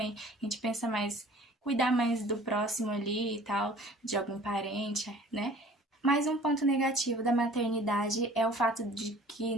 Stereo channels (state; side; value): normal; both; correlation 0.49